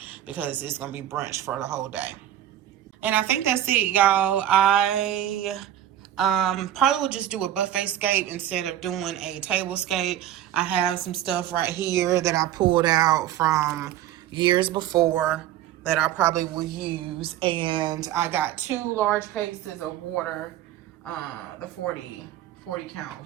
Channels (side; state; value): left; quieter; 12.0 dB